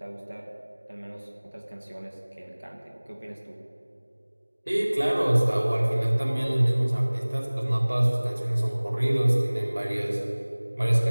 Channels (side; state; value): both; inverted; correlation -1.00